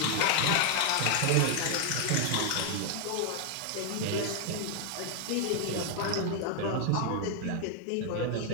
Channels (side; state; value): both; different; correlation 0.00